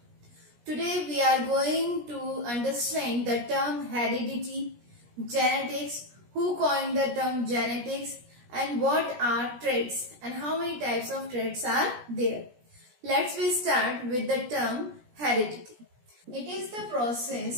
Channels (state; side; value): late; left; 17 ms